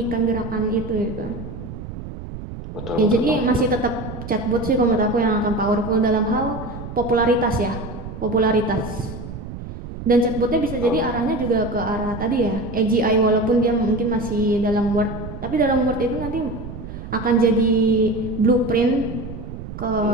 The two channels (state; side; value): noise; right; rumble, 10 dB below the sound